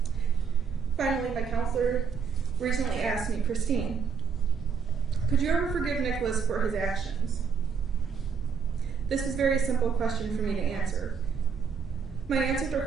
Finally, my counselor recently asked me, Christine, could you ever forgive Nicholas for his actions? This is a very simple question for me to answer. My answer to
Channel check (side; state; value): left; quieter; 6.1 dB